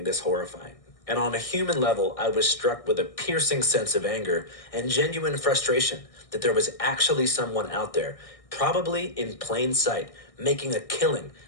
this horrifying. And on a human level, I was struck with a piercing sense of anger and genuine frustration that there was actually someone out there, probably in plain sight, making a killing,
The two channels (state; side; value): late; right; 1.6 ms